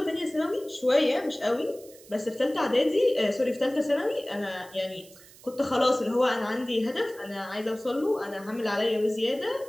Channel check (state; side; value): noise; right; hiss, 22 dB below the sound